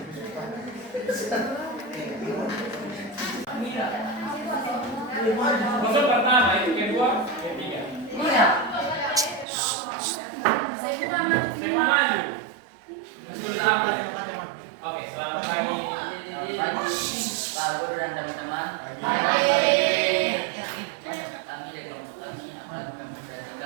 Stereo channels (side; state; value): left; drops out; at 9.5 s